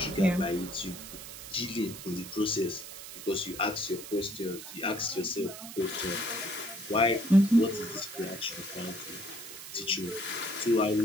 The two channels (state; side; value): noise; right; hiss, 12 dB below the sound